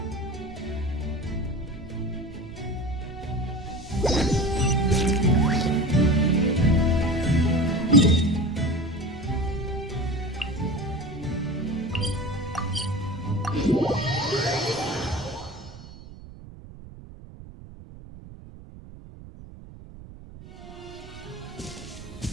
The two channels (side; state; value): right; noise; rumble, 16 dB below the sound